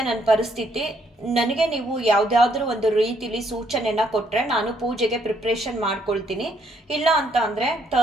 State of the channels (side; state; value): both; normal; correlation 0.71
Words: ನನ್ನ ಪರಿಸ್ಥಿತಿ, ನನಗೆ ನೀವು ಯಾವುದಾದ್ರೂ ಒಂದು ರೀತಿಲಿ ಸೂಚನೆನ ಕೊಟ್ಟರೆ ನಾನು ಪೂಜೆಗೆ ಪ್ರಿಪ್ರೇಷನ್ ಮಾಡ್ಕೊಳ್ತೀನಿ. ಇಲ್ಲ ಅಂತ ಅಂದರೆ